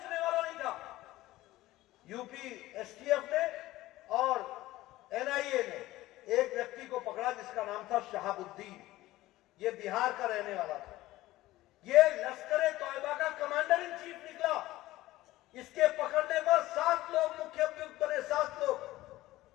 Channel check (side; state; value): right; quieter; 16.9 dB